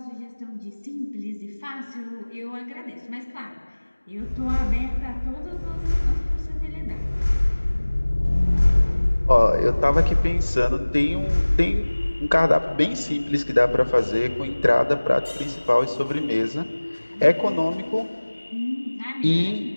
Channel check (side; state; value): both; inverted; correlation -1.00